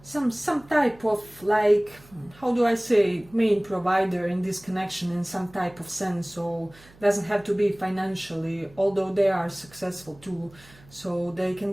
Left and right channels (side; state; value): right; noise; hum, 25 dB below the sound